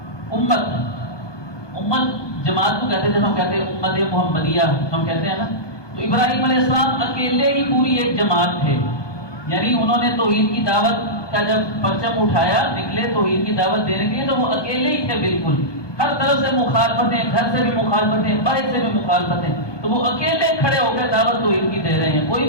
امت جماعت کو کہتے ہیں، جب ہم کہتے ہیں امت محمدیہ ہم کہتے ہیں نا، تو ابراہیم علیہ السلام اکیلے ہی پوری ایک جماعت تھے. یعنی انہوں نے توحید کی دعوت کا جب پرچم اٹھایا نکلے توحید کی دعوت دینے کے لیے، تو وہ اکیلے ہی تھے بالکل، ہر طرف سے مخالفتیں، گھر سے بھی مخالفتیں، باہر سے بھی مخالفتیں، تو وہ اکیلے کھڑے ہو کے دعوت توحید کی دے رہے ہیں، کوئی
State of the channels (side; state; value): right; late; 1.2 ms